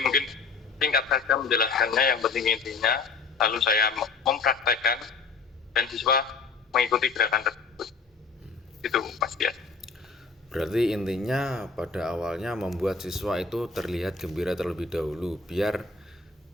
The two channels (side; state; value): right; quieter; 4.6 dB